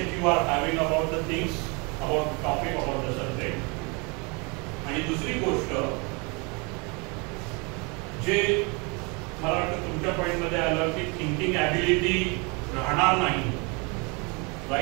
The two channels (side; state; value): left; quieter; 30.3 dB